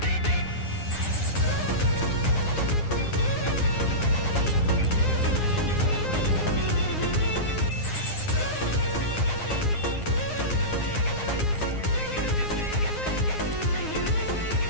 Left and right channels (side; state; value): right; late; 9.6 ms